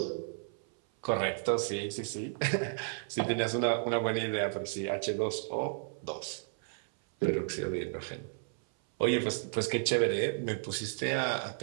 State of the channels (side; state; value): left; silent; 56 dB below the other